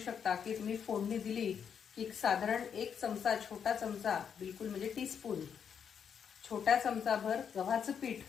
की तुम्ही फोडणी दिली की साधारण 1 चमचा, छोटा चमचा, बिलकुल म्हणजे टीस्पून, छोट्या चमचाभर गव्हाचं पीठ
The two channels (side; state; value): right; quieter; 7.5 dB